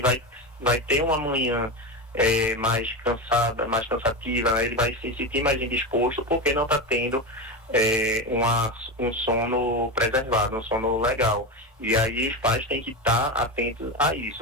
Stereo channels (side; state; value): both; normal; correlation 0.18